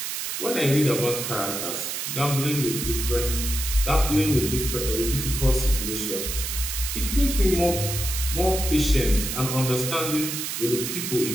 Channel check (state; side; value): noise; right; hiss, 4 dB below the sound